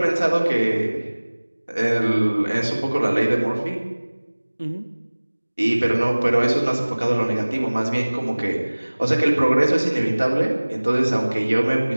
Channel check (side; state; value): both; inverted; correlation -1.00